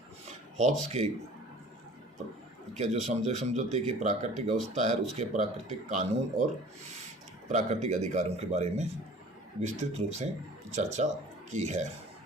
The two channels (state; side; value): normal; both; correlation 0.46